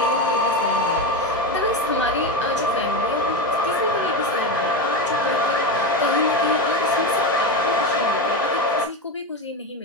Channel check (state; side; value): normal; both; correlation 0.16